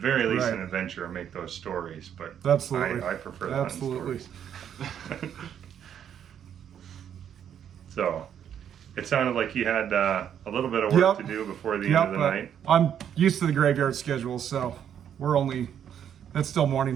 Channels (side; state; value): left; quieter; 9.1 dB